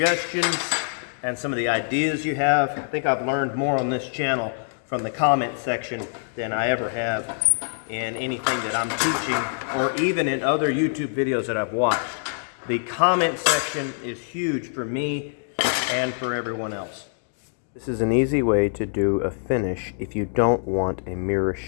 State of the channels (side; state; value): right; silent; digital silence